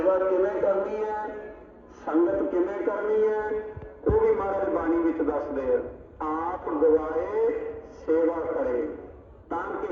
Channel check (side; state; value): both; identical; correlation 1.00